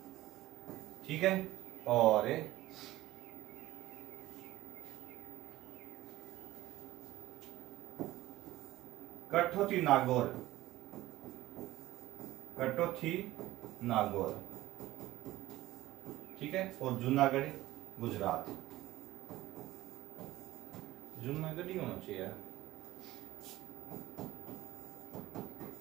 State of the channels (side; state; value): left; quieter; 16.3 dB